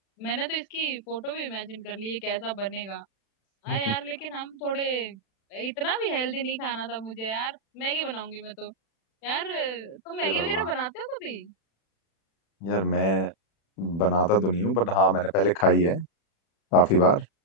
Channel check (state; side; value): late; right; 36 ms